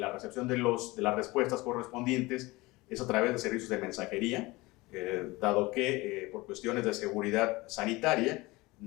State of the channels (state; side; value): quieter; right; 21.9 dB